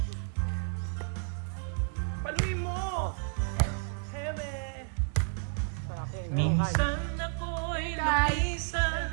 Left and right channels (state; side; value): silent; left; 57 dB below the other